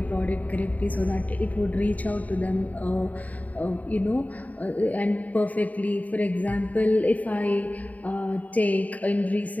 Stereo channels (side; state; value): right; late; 0.072 ms